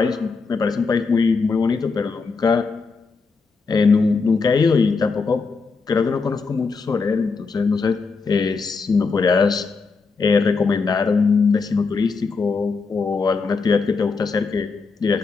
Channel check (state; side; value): quieter; right; 4.6 dB